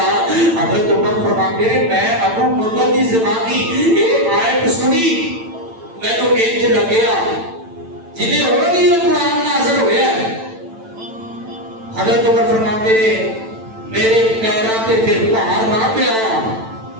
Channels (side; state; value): left; late; 9.0 ms